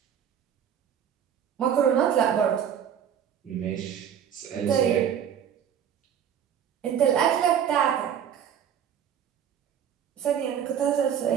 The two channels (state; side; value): quieter; left; 8.8 dB